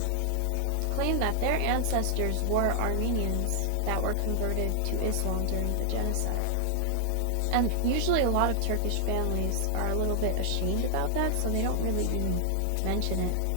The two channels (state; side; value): different; both; correlation -0.01